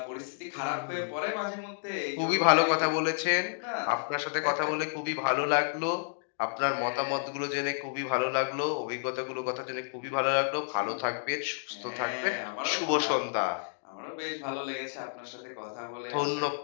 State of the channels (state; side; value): silent; right; digital silence